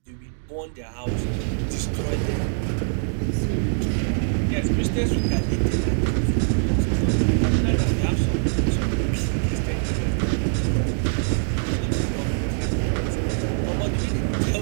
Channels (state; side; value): silent; left; digital silence